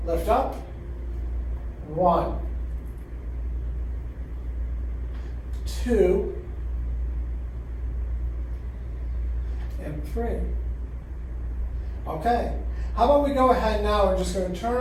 Lift up. 1, 2, and 3. Okay. How about we go ahead now, we're just going to turn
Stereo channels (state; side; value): identical; both; correlation 1.00